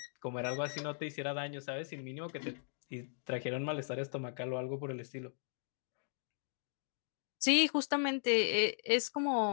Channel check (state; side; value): silent; right; digital silence